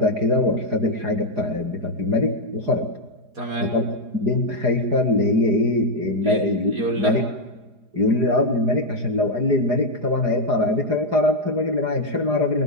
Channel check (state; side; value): late; left; 4.8 ms